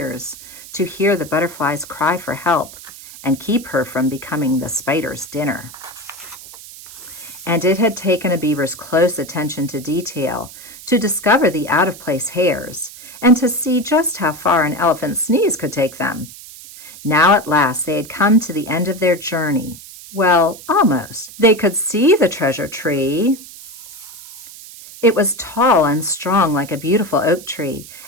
to hear the butterfly's cry for help and keep her from becoming the spider's dinner. And it had taken a beaver's close attention to detail to discover the out-of-place hairs and to see just how far an elephant's sneeze could take them. Now at last they had come to the end of their journey. Well, almost. They could see the treasure tree. It was tall and strong like a beautiful oak tree,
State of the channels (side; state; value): right; noise; hiss, 16 dB below the sound